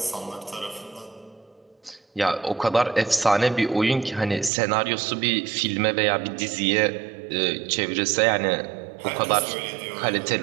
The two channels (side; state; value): left; drops out; at 4.5 s